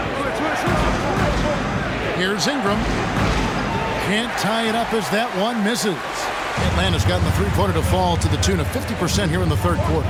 Here's Ingram. Can't tie it up as that one misses. Atlanta's gotten the three-pointer to fall to the tune of 50% here in the third quarter.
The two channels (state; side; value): identical; both; correlation 1.00